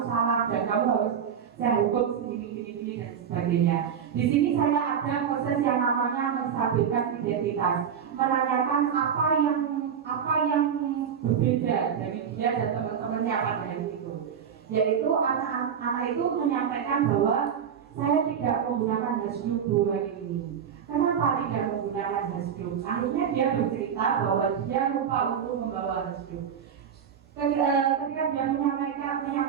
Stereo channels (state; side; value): quieter; left; 7.8 dB